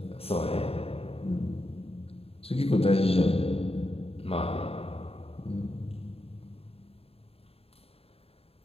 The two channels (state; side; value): late; right; 0.28 ms